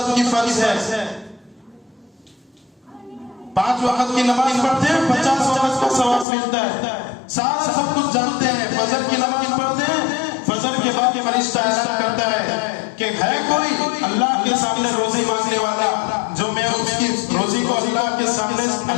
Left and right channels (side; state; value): right; drops out; at 6.2 s